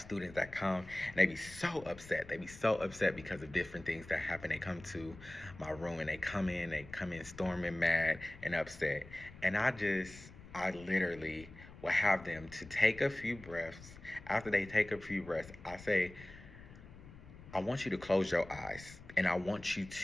students that come and they be so upset. They be so upset because of different things that happen. They come to my room and they come in storming mad and upset. And I literally will have them to take a few breaths. After they take a few breaths, I say, I want you to close your eyes and I want you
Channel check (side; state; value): left; noise; rumble, 18 dB below the sound